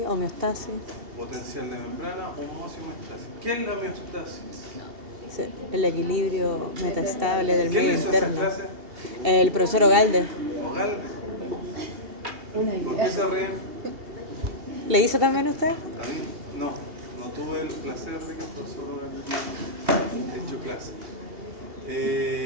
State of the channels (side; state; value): left; late; 2.8 ms